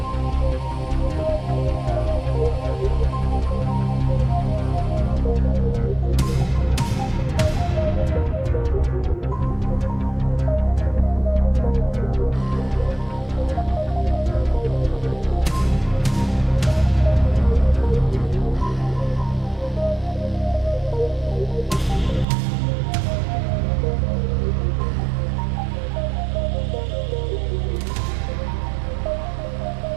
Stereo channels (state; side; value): drops out; left; at 22.2 s